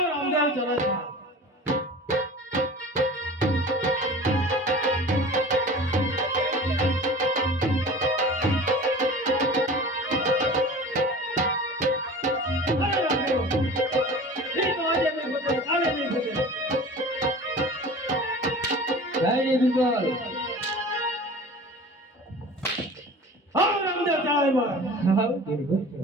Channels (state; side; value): normal; both; correlation 0.39